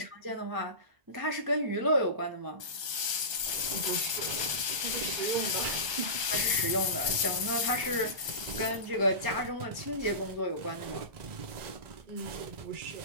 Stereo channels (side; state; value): left; late; 1.3 ms